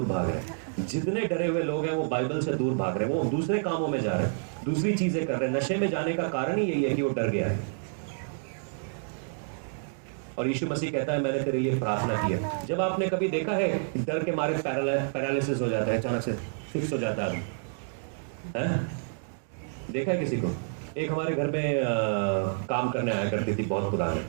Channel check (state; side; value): silent; left; digital silence